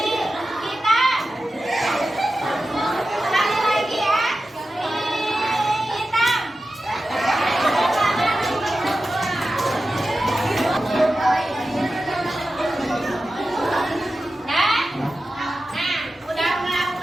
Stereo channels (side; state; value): both; normal; correlation 0.93